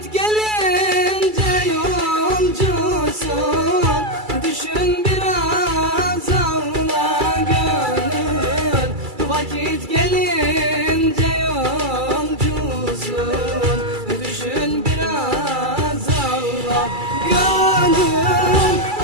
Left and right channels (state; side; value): late; left; 2.3 ms